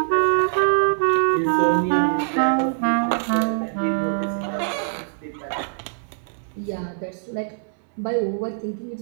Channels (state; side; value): silent; left; 63 dB below the other